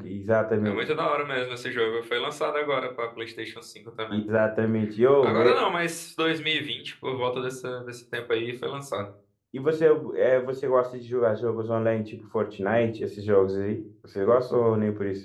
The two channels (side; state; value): both; identical; correlation 1.00